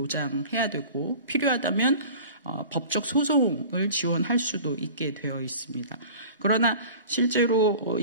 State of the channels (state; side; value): inverted; both; correlation -0.41